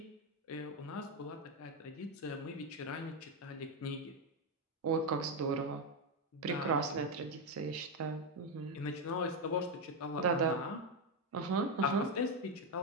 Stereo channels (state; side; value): normal; both; correlation 0.06